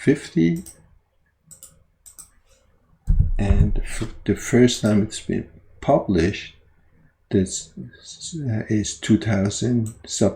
and the first time it's been published, this is 2000,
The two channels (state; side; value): identical; both; correlation 1.00